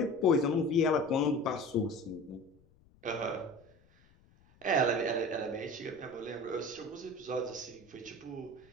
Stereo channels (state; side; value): noise; left; rumble, 29 dB below the sound